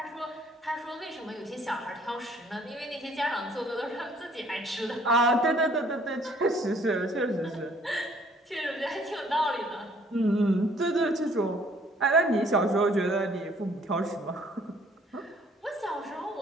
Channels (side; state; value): both; normal; correlation 0.60